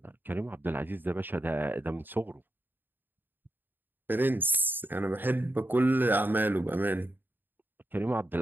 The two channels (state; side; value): late; left; 0.094 ms